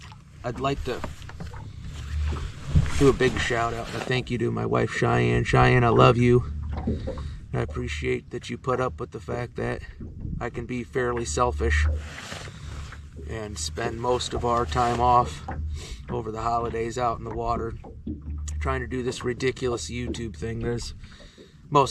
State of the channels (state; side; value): identical; both; correlation 1.00